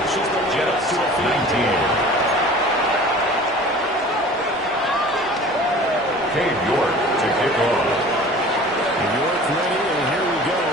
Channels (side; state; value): both; normal; correlation 0.43